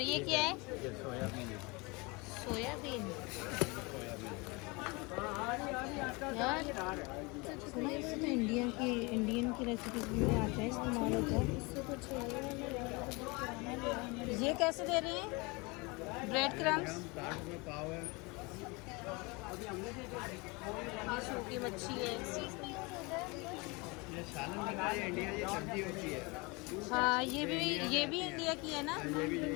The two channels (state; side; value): quieter; right; 27.1 dB